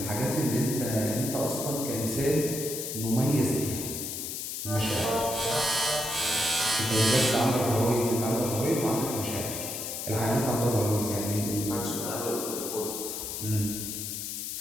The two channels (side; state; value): left; noise; hiss, 5 dB below the sound